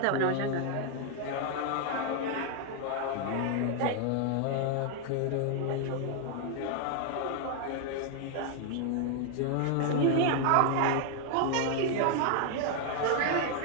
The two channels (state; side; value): different; both; correlation 0.00